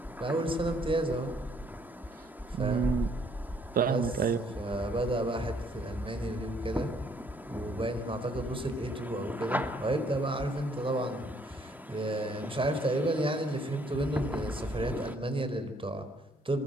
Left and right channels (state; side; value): normal; both; correlation 0.66